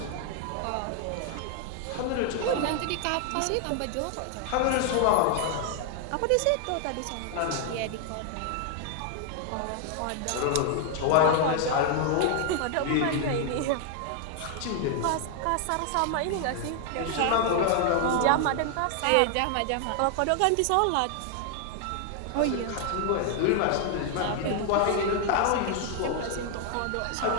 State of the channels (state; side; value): different; both; correlation 0.00